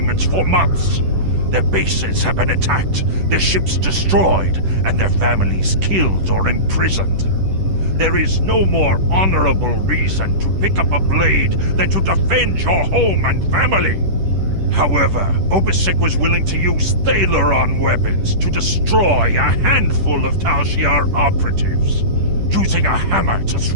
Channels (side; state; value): left; late; 10 ms